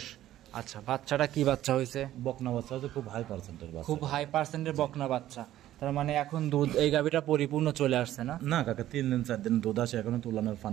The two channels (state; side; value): quieter; left; 13.4 dB